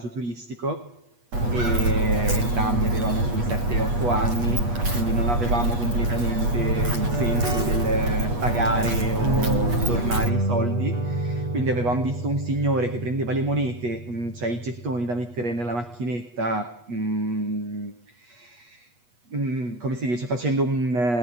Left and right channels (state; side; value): late; left; 8.3 ms